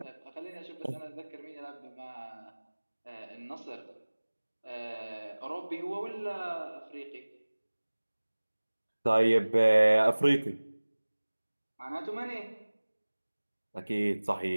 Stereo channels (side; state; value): both; inverted; correlation -1.00